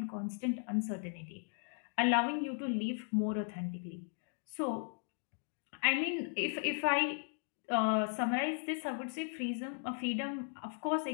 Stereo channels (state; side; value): silent; right; 53 dB below the other